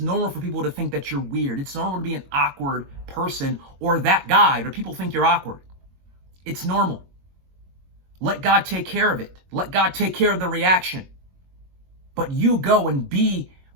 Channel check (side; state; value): left; late; 22 ms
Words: for people to think that you're weird. It's normal to be an awkward person or that guy, or people think you're awkward. It's normal. Let God take care of it. Let God take care of the reaction. But you go and be